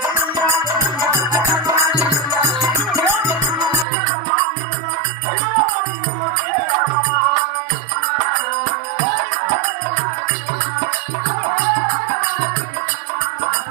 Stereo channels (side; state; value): left; drops out; at 3.9 s